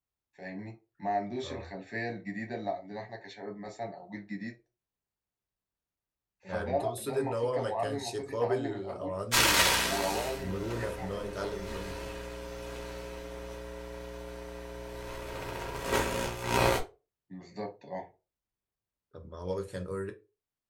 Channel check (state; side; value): identical; both; correlation 1.00